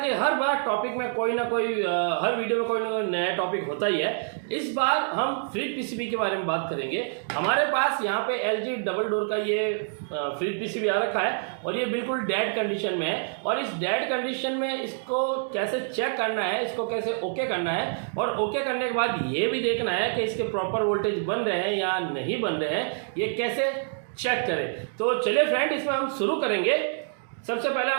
हर बार टॉपिक में कोई ना कोई हर वीडियो में कोई ना कोई नया टॉपिक होता ही है। इस बार हम फ्रिज पीसीबी के बारे में बात करेंगे। हमारे पास यहाँ पे LG डबल डोर का ये फ्रिज पीसीबी आ रखा है और ये बिल्कुल डेड कंडीशन में है। और इस डेड कंडीशन में इसको कैसे चेक करना है, इसको कैसे ओके करना है, और ओके करने के बाद ये भी देखना है कि इसके प्रॉपर वोल्टेज बन रहे हैं या नहीं बन रहे हैं, ये कैसे चेक करें। तो चलिए फ्रेंड, इसमें हम शुरू करेंगे। सबसे पहले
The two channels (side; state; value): left; silent; digital silence